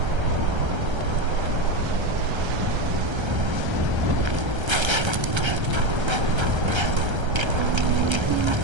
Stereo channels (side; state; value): left; late; 1.3 ms